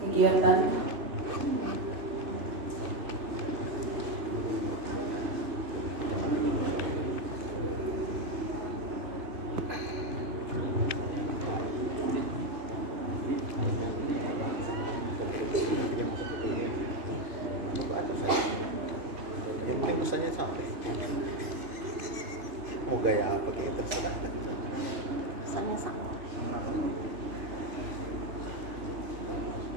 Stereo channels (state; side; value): late; left; 2.5 ms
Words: kegiatan yang penting pesannya sampai. Mau gaya apa kayak terserah. Pesannya sama.